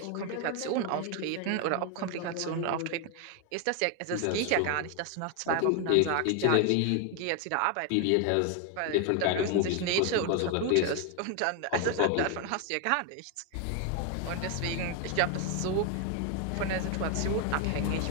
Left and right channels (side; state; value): both; different; correlation 0.01